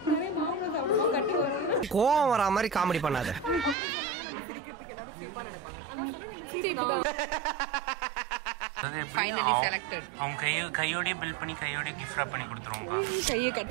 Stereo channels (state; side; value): drops out; left; at 3.8 s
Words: கோவம் வரா மாதிரி காமெடி பண்ணாத. அப்புறம் சொன்னாங்க நம்ம சிரிக்கிறதுக்கு எல்லாரும் சீப்பா நினைப்பாங்க. அதான் சொன்னா நம்ம சீப் தான். Finally selected. அவங்க கையோடய பில் பண்ணி கையோடய கிஃப்ட் ராப் பண்ணி கொடுத்துருவோம்க்கா. கையை கட்